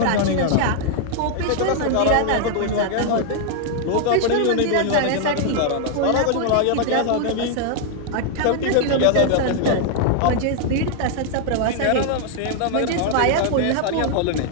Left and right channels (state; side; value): different; both; correlation 0.00